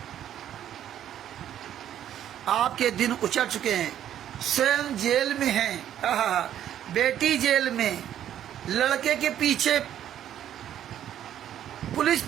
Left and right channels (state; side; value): quieter; left; 10.8 dB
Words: आपके दिन उचट चुके हैं, स्वयं जेल में हैं, बेटी जेल में, लड़के के पीछे पुलिस